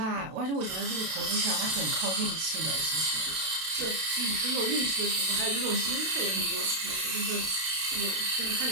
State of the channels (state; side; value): late; left; 32 ms